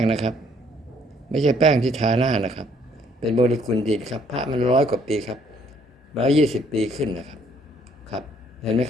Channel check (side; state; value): both; normal; correlation 0.64